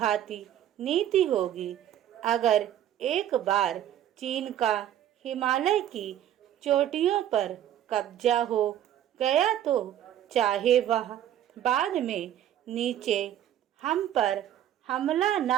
नीति होगी। अगर एक बार चीन का हिमालय की चोटियों पर कब्जा हो गया तो चाहे वह बाद में नीचे हम पर हमला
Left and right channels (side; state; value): left; quieter; 11.3 dB